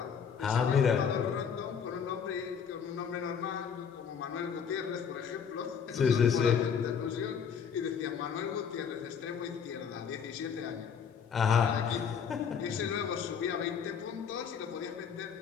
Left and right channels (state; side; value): quieter; right; 7.0 dB